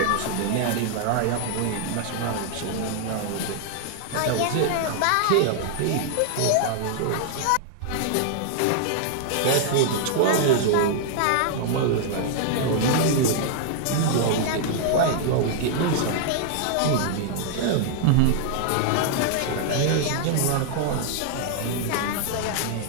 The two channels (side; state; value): both; different; correlation -0.01